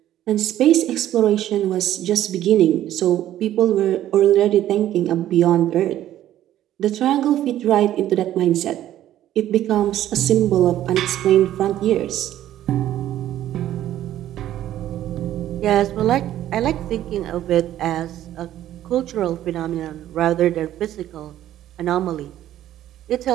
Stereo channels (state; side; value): quieter; left; 12.6 dB